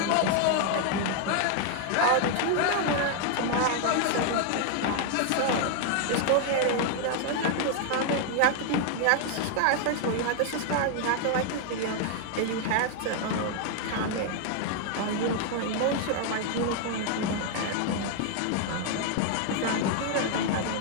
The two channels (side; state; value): both; different; correlation 0.00